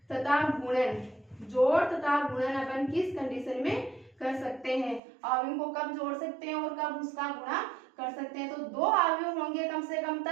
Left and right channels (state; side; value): drops out; left; at 5.0 s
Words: तथा गुणन। जोड़ तथा गुणन अपन किस कंडीशन में कर सकते हैं? अवयव को कब जोड़ सकते हैं और कब उसका गुणा कर सकते हैं? तो 2 अवयव होंगे कम से कम